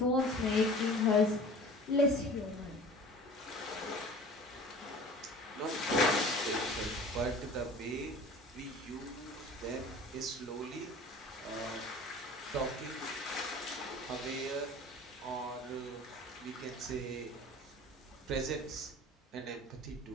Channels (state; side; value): normal; both; correlation 0.42